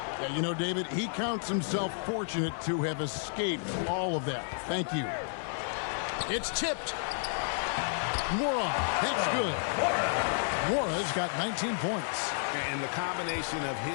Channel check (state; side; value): silent; right; 57 dB below the other